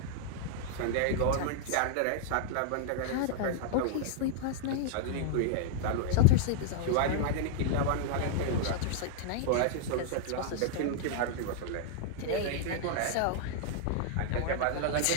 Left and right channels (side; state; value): both; different; correlation -0.01